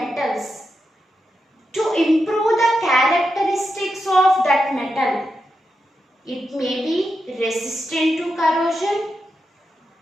to improve the characteristics of that metal. It may be resistant to corrosion.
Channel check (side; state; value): both; normal; correlation 0.87